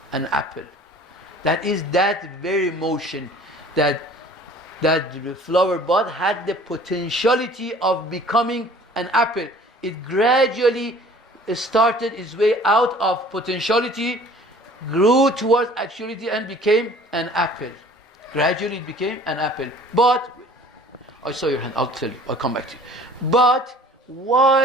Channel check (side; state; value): both; normal; correlation 0.50